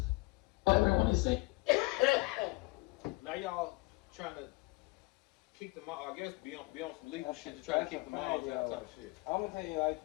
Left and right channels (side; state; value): right; quieter; 23.6 dB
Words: Everyone is saying. Now y'all trying to kick them out, I guess be on some legal shit to try to kick them out type of shit. I'm gonna tell you like